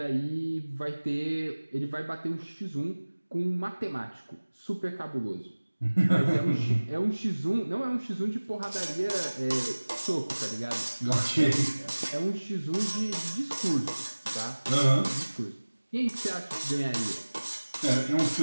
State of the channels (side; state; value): both; inverted; correlation -1.00